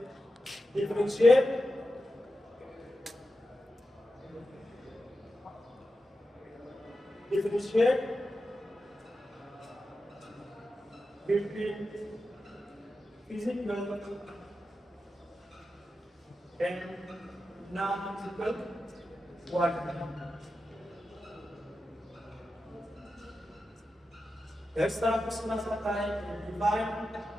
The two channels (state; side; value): normal; both; correlation 0.90